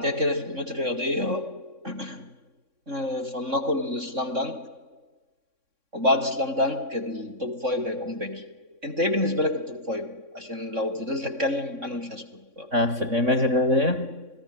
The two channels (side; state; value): left; late; 3.6 ms